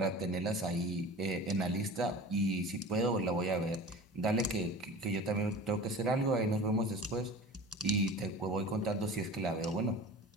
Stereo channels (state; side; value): normal; both; correlation 0.37